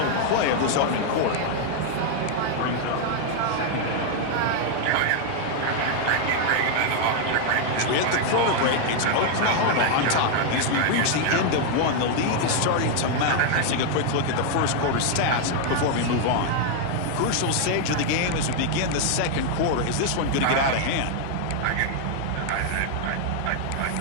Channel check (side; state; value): both; different; correlation 0.00